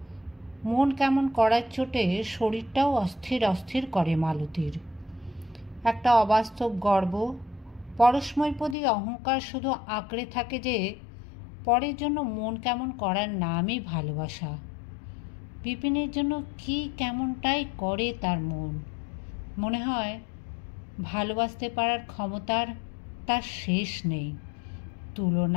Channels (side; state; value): right; drops out; at 8.8 s